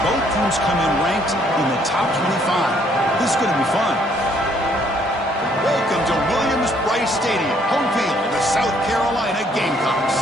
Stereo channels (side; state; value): both; normal; correlation 0.65